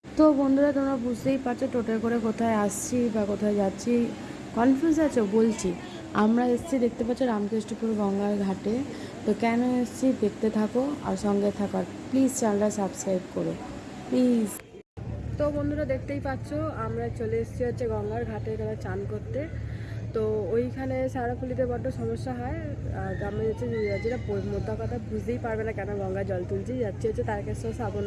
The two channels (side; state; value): both; identical; correlation 1.00